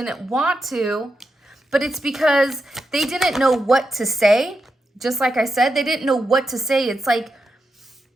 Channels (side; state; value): both; normal; correlation 0.87